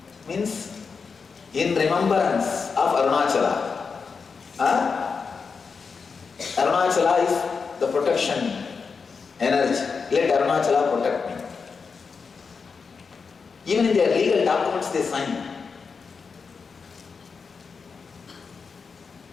Means in remembrance of Arunachala. Arunachala is the protection energy. Let Arunachala protect me. Even in their legal documents, they sign.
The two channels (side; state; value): right; quieter; 5.3 dB